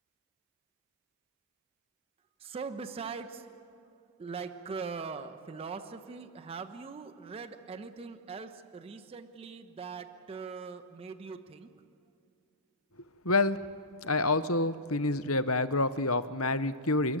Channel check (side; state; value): both; normal; correlation -0.18